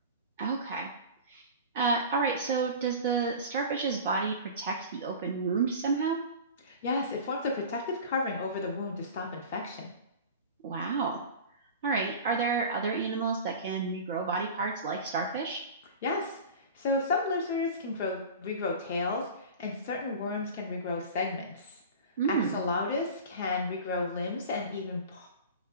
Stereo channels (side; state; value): both; inverted; correlation -0.34